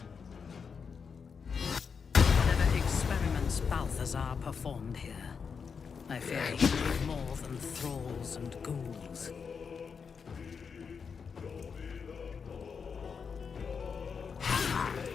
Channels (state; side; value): quieter; right; 6.0 dB